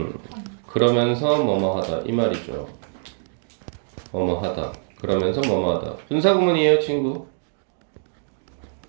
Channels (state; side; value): silent; left; digital silence